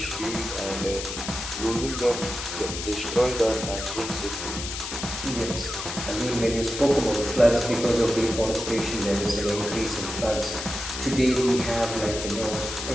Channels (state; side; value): noise; left; hiss, 6 dB below the sound